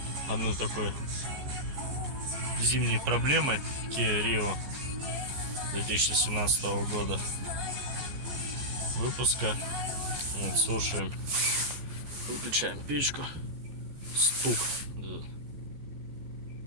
одной такой зимней проблемой Kia Rio 2017 года выпуска. Вот, слушаем, выключаем печку. Стук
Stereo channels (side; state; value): left; late; 14 ms